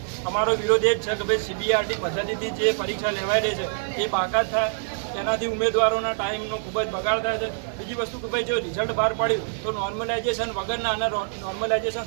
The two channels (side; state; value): left; silent; digital silence